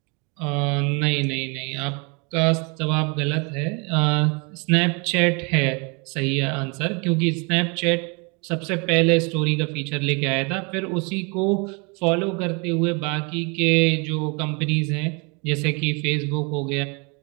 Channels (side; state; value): left; quieter; 31.8 dB